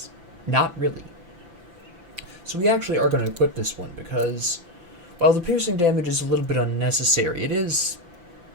not really. So we actually are going to equip this one, because while the piercing damage is a little bit unnecessary, it is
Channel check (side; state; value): left; late; 5.9 ms